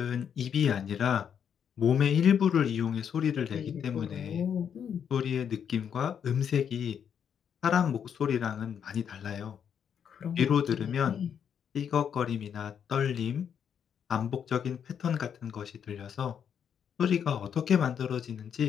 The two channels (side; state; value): right; quieter; 8.0 dB